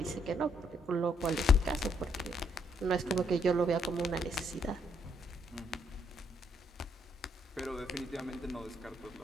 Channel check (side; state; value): both; normal; correlation 0.72